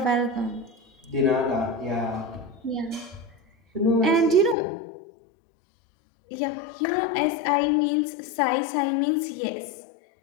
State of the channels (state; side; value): drops out; right; at 4.5 s